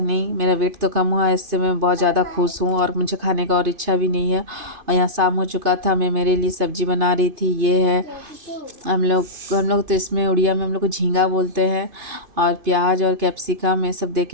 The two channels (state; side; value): late; left; 2.5 ms